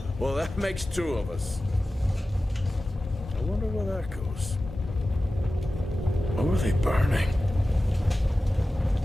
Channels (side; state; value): both; normal; correlation 0.95